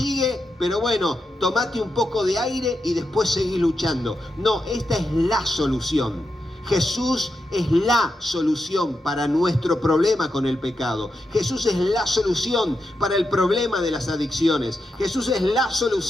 pero bueno, tomate un poco de aire y después seguí luchando. No, esta es la solución. Jesús es la solución para nuestro problema con el pecado. Jesús es la solución para el problema de las adicciones. Jesús es la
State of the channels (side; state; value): both; normal; correlation 0.86